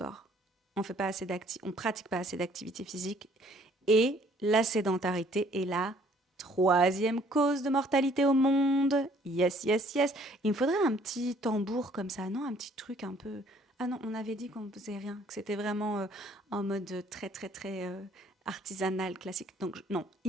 on pratique pas assez d'activité physique et la sédentarité est la troisième cause de mortalité au monde. Yes, yes, yes. Il me faudrait un petit tambour comme ça, non? Un petit truc un peu. Ah non, on avait dit qu'on ne faisait rien, que c'était vraiment en mode très, très, très artisanal, classique. Donc, non,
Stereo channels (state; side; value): normal; both; correlation 0.60